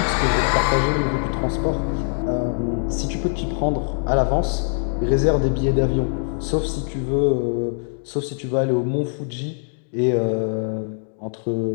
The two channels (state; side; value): silent; right; digital silence